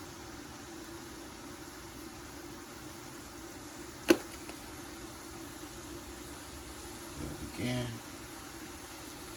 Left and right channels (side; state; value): both; identical; correlation 1.00